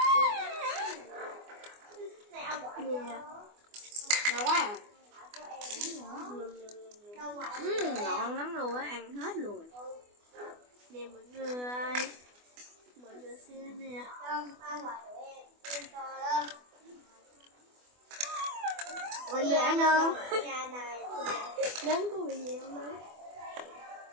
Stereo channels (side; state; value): left; late; 24 ms